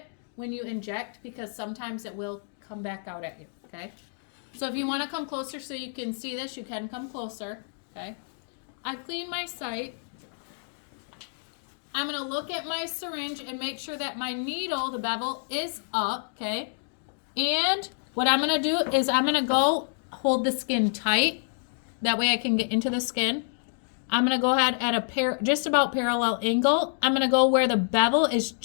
when you inject, because sometimes it will come back out at you, okay? So if you want to come closer so you can see this, you can come closer, okay? I've cleaned my site. I'm going to look at my syringe and make sure that my needle, the bevel, is up, okay? And what I'm going to do is I'm going to go hold the skin tight. That way I can get into the skin. I'm going to go ahead at just about parallel angle. I'm going to go where the bevel is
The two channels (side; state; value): right; silent; digital silence